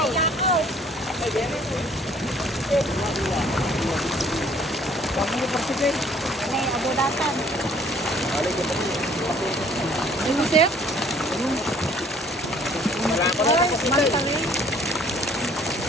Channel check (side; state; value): both; normal; correlation 0.58